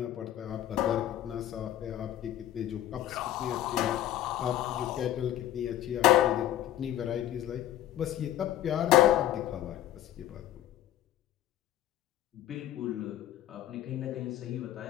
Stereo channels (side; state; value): right; quieter; 12.8 dB